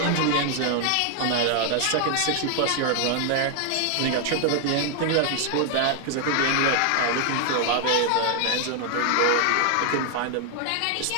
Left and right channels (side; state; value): both; different; correlation 0.00